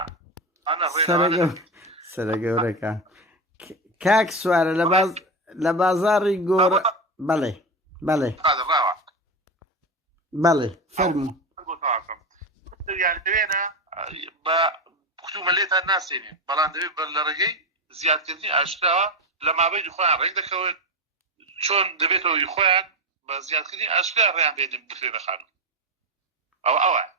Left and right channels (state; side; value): normal; both; correlation 0.16